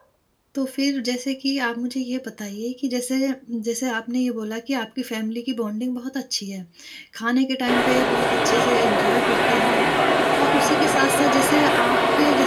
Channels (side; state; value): both; identical; correlation 1.00